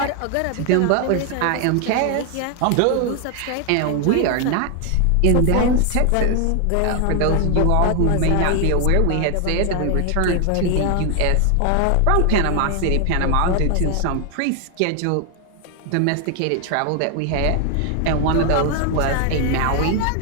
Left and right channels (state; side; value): different; both; correlation 0.00